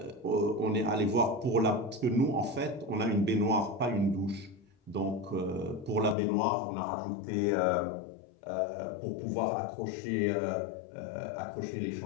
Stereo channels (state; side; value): drops out; right; at 6.2 s